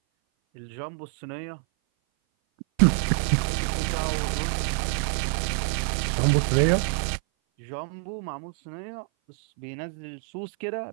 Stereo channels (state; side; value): silent; left; 57 dB below the other